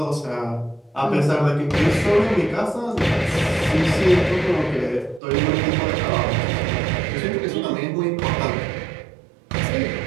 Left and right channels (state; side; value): drops out; left; at 5.2 s